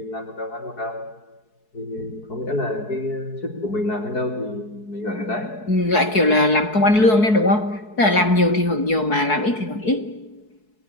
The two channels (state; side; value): late; right; 4.7 ms